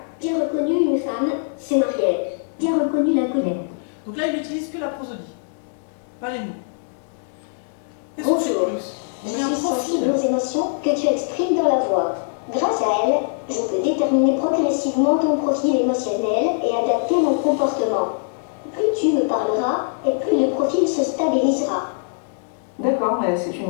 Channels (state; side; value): silent; right; 60 dB below the other